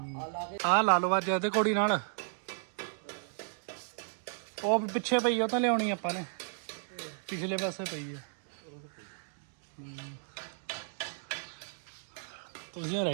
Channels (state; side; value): silent; left; digital silence